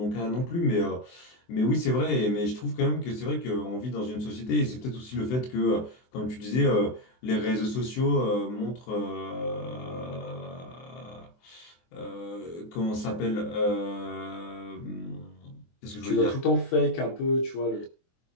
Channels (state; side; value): late; right; 24 ms